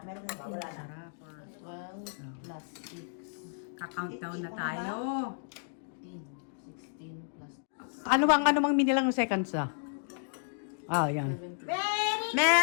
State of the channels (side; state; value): right; silent; digital silence